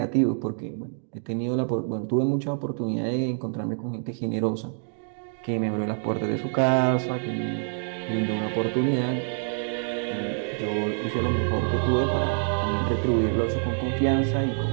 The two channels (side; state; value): left; silent; digital silence